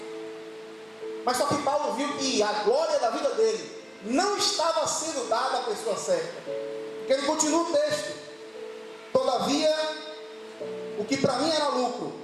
Mas só que Paulo viu que a glória da vida dele não estava sendo dada à pessoa certa. Porque ele continua o texto: todavia, o que para mim era lucro,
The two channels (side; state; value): both; identical; correlation 1.00